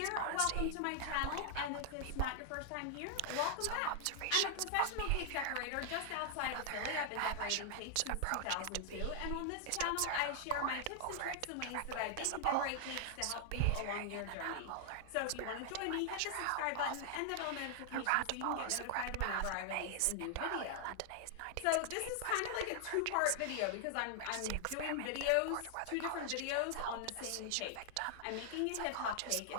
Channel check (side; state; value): both; different; correlation 0.00